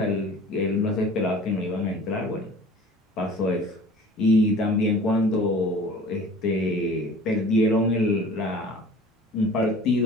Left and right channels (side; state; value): both; normal; correlation 0.44